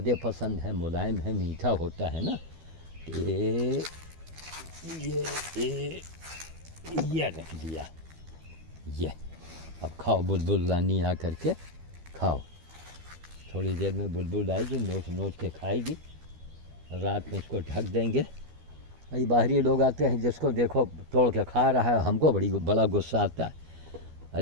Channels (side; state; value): left; late; 12 ms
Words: पसंद है, मुलायम है, मीठा होता है ना। ये रख दिया, ये अब खाओ बुलबुल रानी, आ करके खाओ। थोड़ी देर में बुलबुल आएगी, नोच नोच के खाएगी। रात में इसको ढक देंगे। भाई बाहरी लोग आते हैं, जिसको देखो तोड़ के खा रहा है, हमको बड़ा गुस्सा आता है।